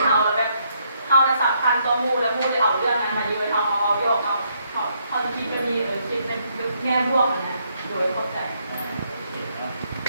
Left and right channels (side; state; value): both; inverted; correlation -0.73